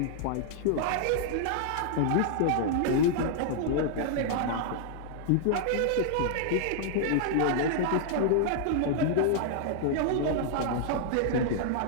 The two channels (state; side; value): different; both; correlation -0.01